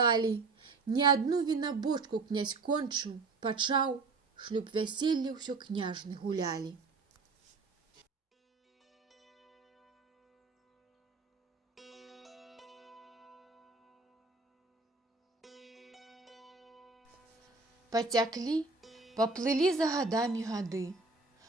Не адну вінабочку князь кончыў, пачаў, шлюб вяселля ўсё княжны гулялі. Пацяклі, паплылі за гадамі гады,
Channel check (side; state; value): left; quieter; 3.9 dB